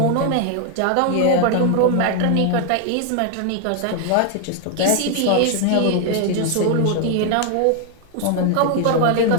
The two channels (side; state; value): both; different; correlation 0.00